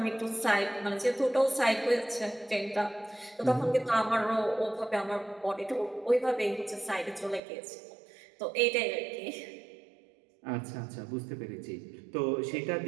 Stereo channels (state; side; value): drops out; left; at 7.4 s